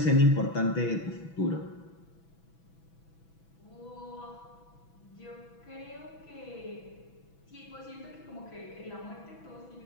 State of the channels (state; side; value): late; right; 6.1 ms